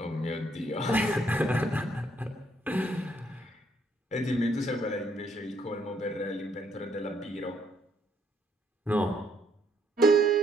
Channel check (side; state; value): both; normal; correlation 0.70